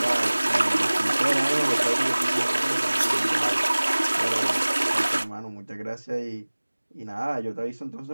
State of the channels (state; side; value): inverted; both; correlation -1.00